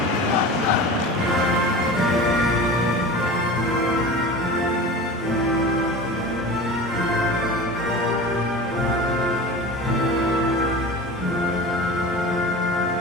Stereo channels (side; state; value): both; normal; correlation 0.34